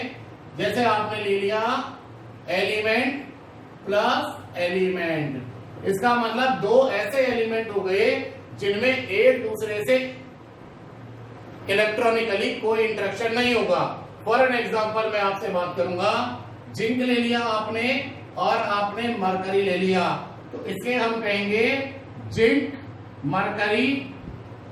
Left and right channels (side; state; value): both; identical; correlation 1.00